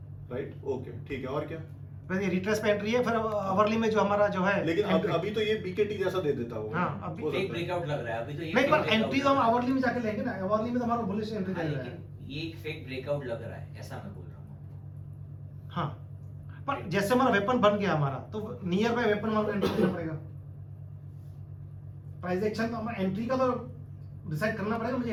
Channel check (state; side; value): identical; both; correlation 1.00